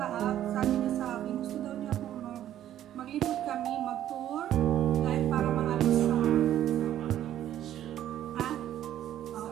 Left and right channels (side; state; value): left; quieter; 11.8 dB